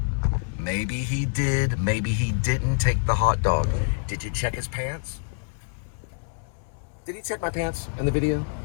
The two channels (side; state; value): right; silent; 59 dB below the other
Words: Maybe he did, maybe he didn't take the hot dog. Did you check his pants? Did he check my pants in the video?